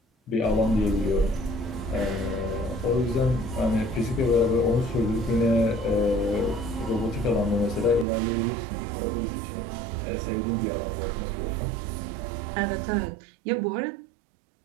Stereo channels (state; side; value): drops out; left; at 8.1 s